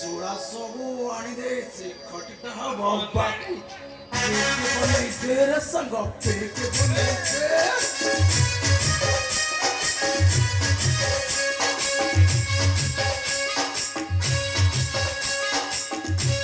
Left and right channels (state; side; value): identical; both; correlation 1.00